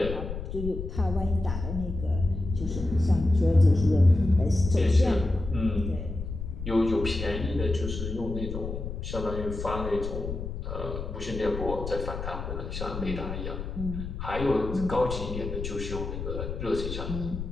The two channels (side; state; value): left; noise; rumble, 6 dB below the sound